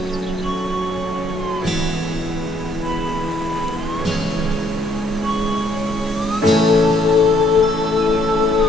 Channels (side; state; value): both; normal; correlation 0.68